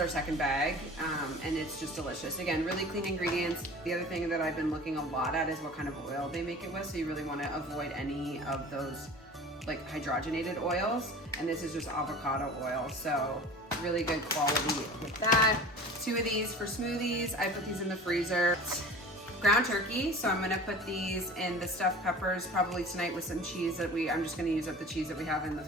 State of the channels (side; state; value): both; normal; correlation 0.39